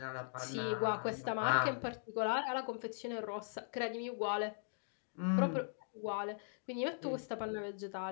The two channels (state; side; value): silent; right; digital silence